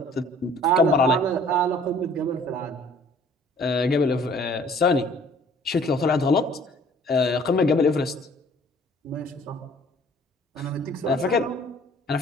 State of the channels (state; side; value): normal; both; correlation 0.54